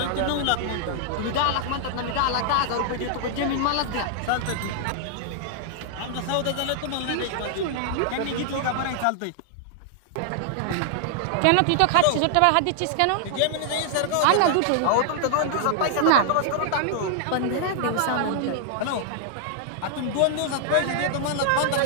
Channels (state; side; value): different; both; correlation -0.01